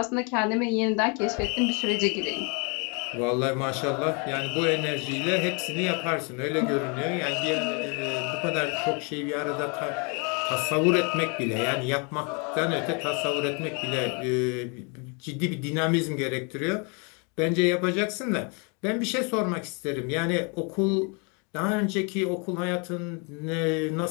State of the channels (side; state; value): right; quieter; 34.2 dB